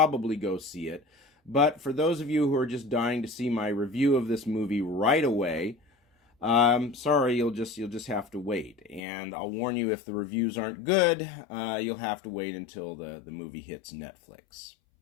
go see it. But for those of you who are just dying to see my review of this movie right away, sorry, you'll just have to wait. And I'll warn you, if the reviews aren't good, you'll have to wait until the movie hits Netflix.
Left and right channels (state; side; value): drops out; right; at 9.0 s